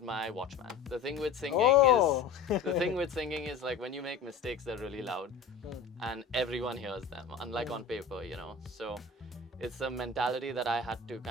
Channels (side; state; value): right; quieter; 5.2 dB